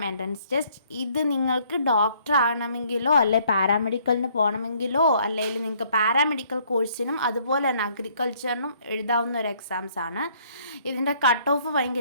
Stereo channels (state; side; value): inverted; both; correlation -0.64